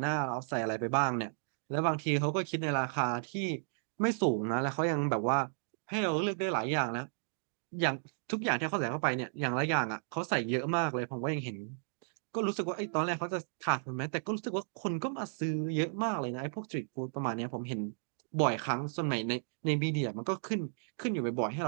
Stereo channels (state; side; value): silent; left; digital silence